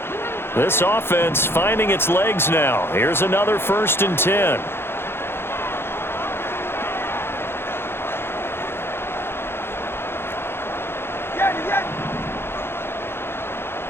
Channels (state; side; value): late; right; 0.11 ms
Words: This offense finding its legs now. Here's another 1st and 10.